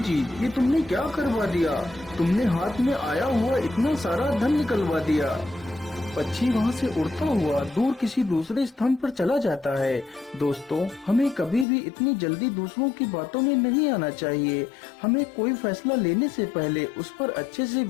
ये तुमने क्या करवा दिया? तुमने हाथ में आया हुआ इतना सारा धन निकलवा दिया। पक्षी वहाँ से उड़ता हुआ दूर किसी दूसरे स्थान पर चला जाता है। दोस्तों, हमें कभी भी इतनी जल्दी दूसरों की बातों में नहीं आना चाहिए। हमें कोई फैसला लेने से पहले उस पर अच्छे से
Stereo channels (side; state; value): right; drops out; at 11.7 s